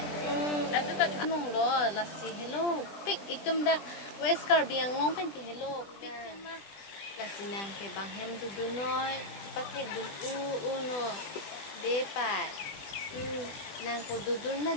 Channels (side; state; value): right; late; 20 ms